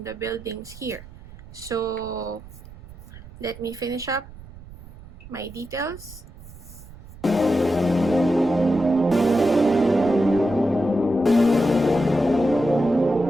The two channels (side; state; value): right; noise; rumble, 18 dB below the sound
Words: the buildings here. So let me finish up my details.